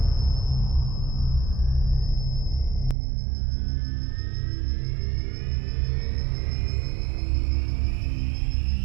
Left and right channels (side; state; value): left; drops out; at 3.0 s